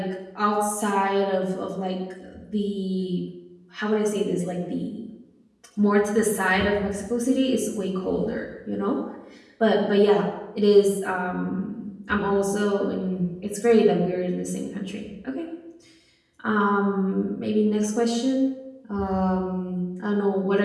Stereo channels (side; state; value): both; identical; correlation 1.00